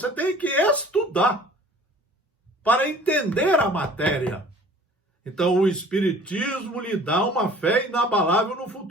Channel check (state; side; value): normal; both; correlation 0.49